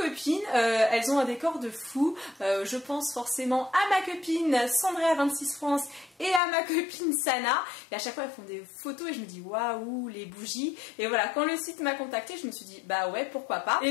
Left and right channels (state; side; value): drops out; right; at 6.4 s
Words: elles ont un décor de fou. Je pense forcément à ma copine Sandrea26 France et à ma copine Sana, et à chaque fois elles font des photos et je me dis waouh, les bougies. Et voilà, quand le site m'a contacté, je me suis dit bah ouais, pourquoi pas.